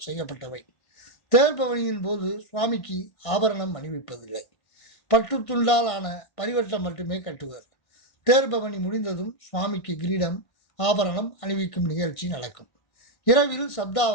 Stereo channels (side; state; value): right; late; 1.5 ms